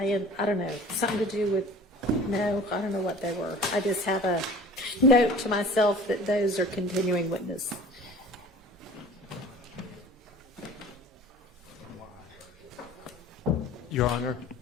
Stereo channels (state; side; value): normal; both; correlation 0.44